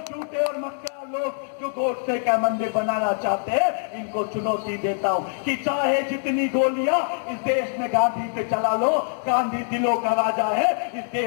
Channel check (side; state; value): right; silent; digital silence